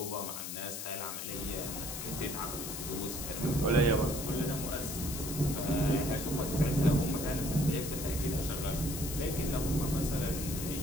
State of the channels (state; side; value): noise; left; hiss, 6 dB below the sound